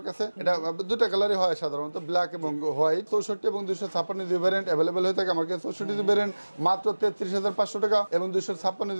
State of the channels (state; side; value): inverted; both; correlation -1.00